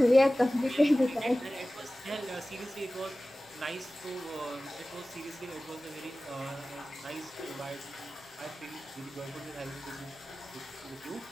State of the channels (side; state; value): both; normal; correlation 0.97